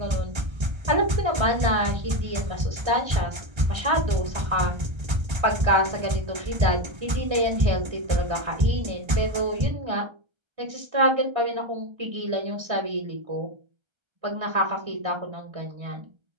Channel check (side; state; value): left; late; 1.3 ms